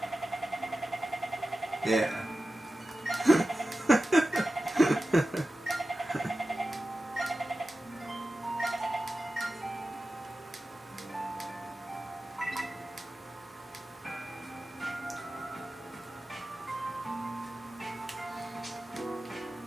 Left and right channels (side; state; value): both; normal; correlation 0.94